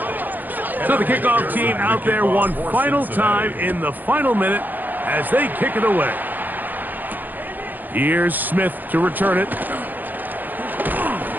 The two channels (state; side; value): late; left; 0.086 ms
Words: So the kickoff team out there one final time in the final minute as they kick it away. Here's Smith to return it.